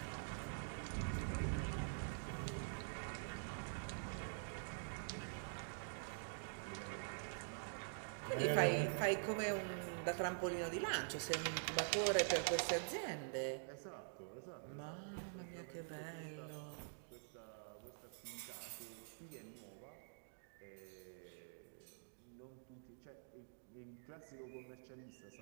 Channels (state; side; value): silent; left; digital silence